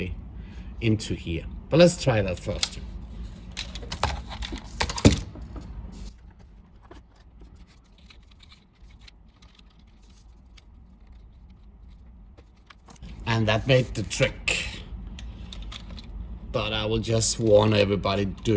into here. But let's try that first. And that made the trick. But I will just warn everybody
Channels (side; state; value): both; identical; correlation 1.00